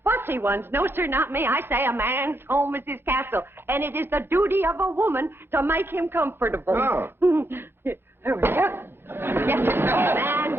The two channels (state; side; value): late; left; 0.11 ms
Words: fussy ones. No, sir, not me. I say a man's home is his castle, and it is the duty of a woman to make him comfortable. Oh. There we go. Yes, sir. A man